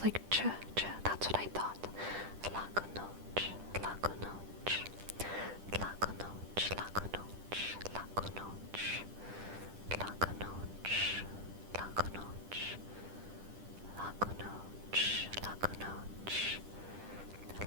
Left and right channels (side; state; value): left; late; 10 ms